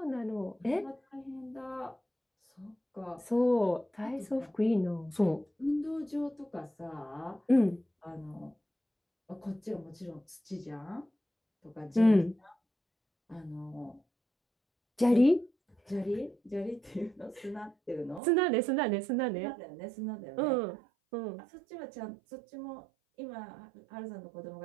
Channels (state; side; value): drops out; left; at 18.2 s